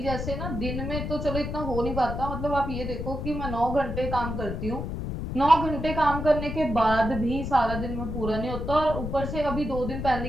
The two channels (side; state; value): left; noise; rumble, 5 dB below the sound